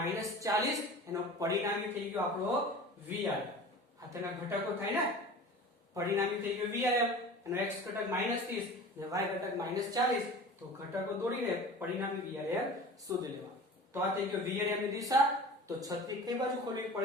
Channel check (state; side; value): normal; both; correlation 0.38